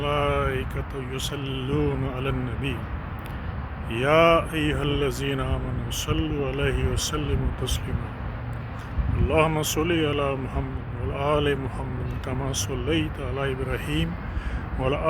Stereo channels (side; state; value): both; identical; correlation 1.00